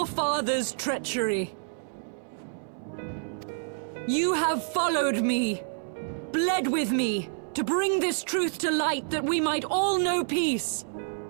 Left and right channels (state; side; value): silent; left; digital silence